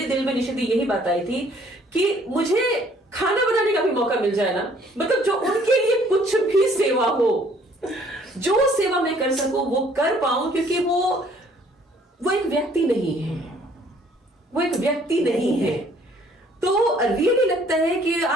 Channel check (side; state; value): both; normal; correlation 0.60